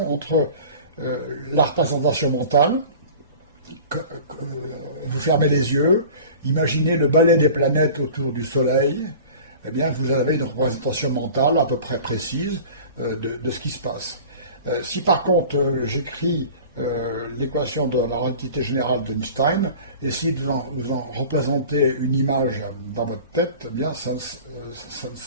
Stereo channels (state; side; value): inverted; both; correlation -0.40